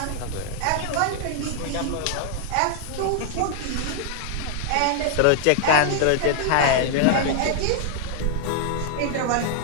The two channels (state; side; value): different; both; correlation -0.01